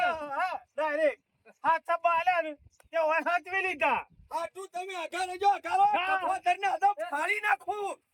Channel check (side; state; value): both; identical; correlation 1.00